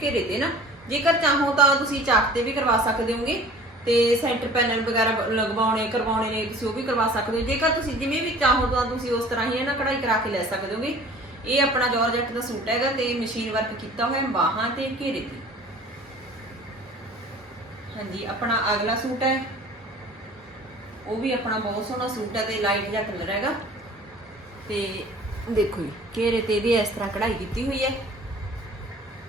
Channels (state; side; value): normal; both; correlation 0.47